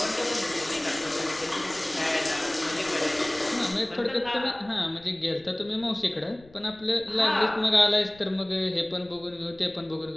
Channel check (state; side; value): noise; left; rumble, 24 dB below the sound